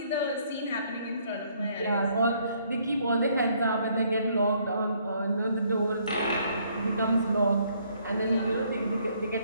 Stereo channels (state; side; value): inverted; both; correlation -0.67